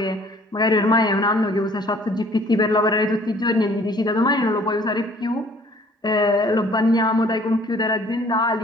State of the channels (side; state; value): both; normal; correlation 0.55